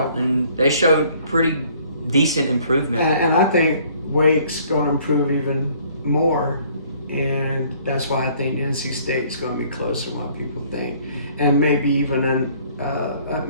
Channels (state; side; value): inverted; both; correlation -0.59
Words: and they showed pretty decent improvement. And I think Wake's going to improve even more, and that's why I think NC State's going to be closer than what people think, and maybe even